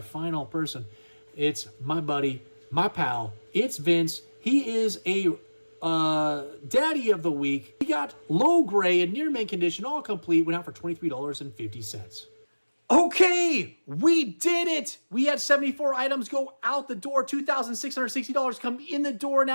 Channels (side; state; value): both; inverted; correlation -1.00